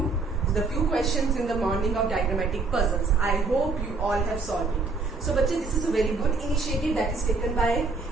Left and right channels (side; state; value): left; quieter; 3.9 dB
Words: the few questions in the morning of diagrammatic puzzles. I hope you all have solved it. So बच्चे, this is a very good initiative that is taken by